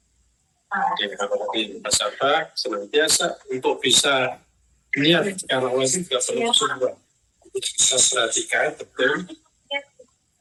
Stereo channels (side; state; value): both; identical; correlation 1.00